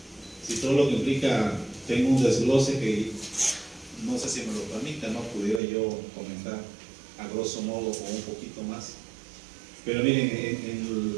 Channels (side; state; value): left; drops out; at 5.6 s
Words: todo lo que implica, tengo un desglose que no sé si me lo permita, no pudiera yo comentar a grosso modo o un poquito más. Pero miren, en